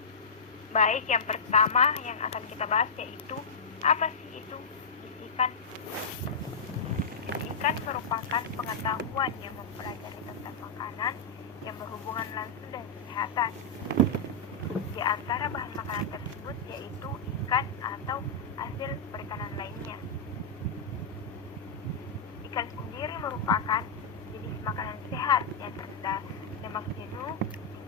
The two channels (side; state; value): right; quieter; 3.8 dB